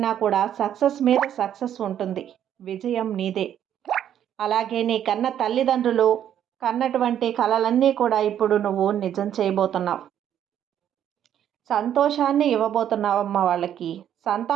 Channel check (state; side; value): quieter; left; 10.2 dB